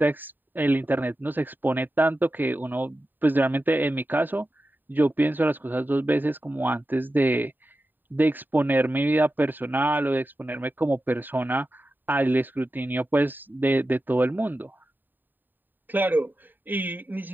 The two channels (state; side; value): late; left; 0.091 ms